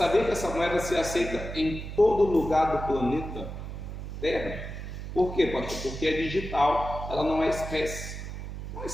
que essa moeda se aceita em todo lugar do planeta Terra? Por quê, pastor? Porque é digital, ela não é espécie. Não é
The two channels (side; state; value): right; noise; hum, 8 dB below the sound